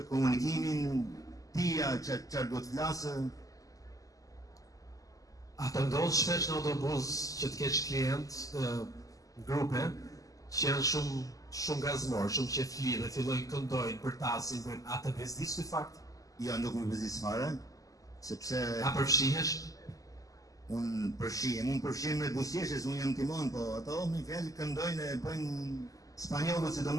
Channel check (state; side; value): late; right; 0.17 ms